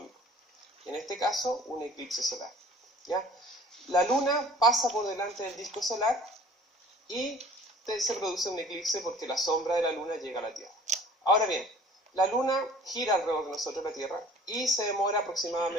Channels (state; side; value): normal; both; correlation 0.49